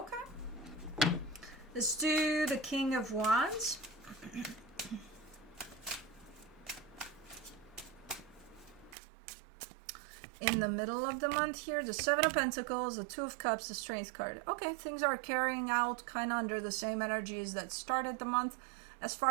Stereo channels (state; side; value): drops out; left; at 9.0 s